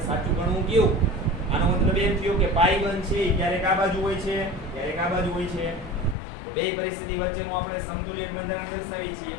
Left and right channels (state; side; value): drops out; right; at 6.2 s